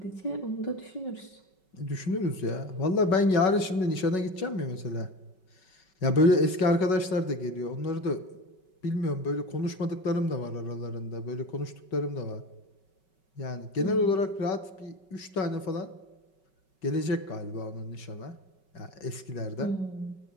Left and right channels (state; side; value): late; right; 5.3 ms